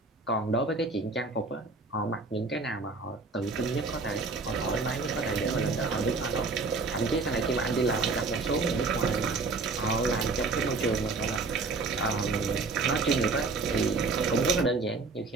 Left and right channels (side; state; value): left; quieter; 3.9 dB